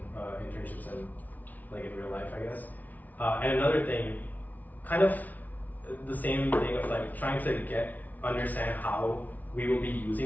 internships and like in real life, I guess. And another thing, kind of the same thing of like trying to understand how we will be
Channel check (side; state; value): right; late; 0.076 ms